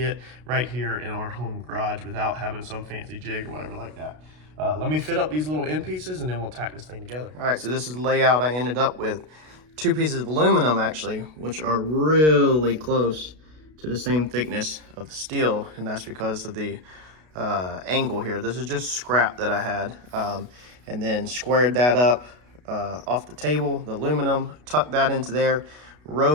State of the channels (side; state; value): left; late; 33 ms